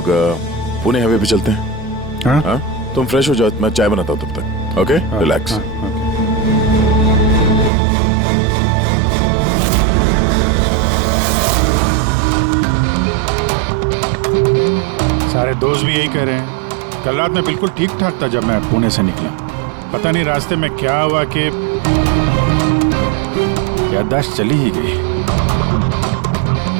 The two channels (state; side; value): drops out; left; at 7.7 s